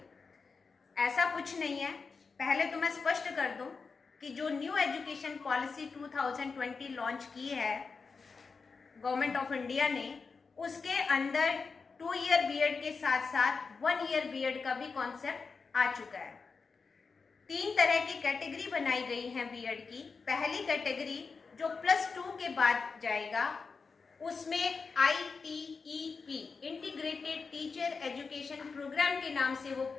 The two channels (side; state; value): right; quieter; 4.8 dB